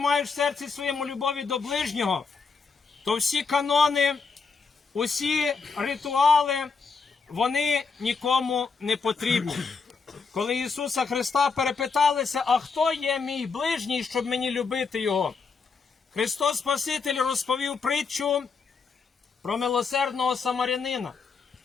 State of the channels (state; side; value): quieter; right; 5.0 dB